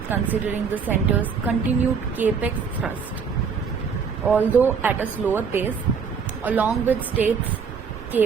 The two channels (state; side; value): quieter; left; 6.1 dB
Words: considering the centre's continued capex thrust, although at a slower pace, along with states'